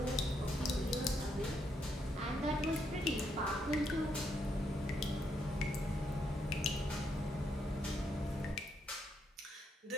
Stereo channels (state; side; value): normal; both; correlation 0.77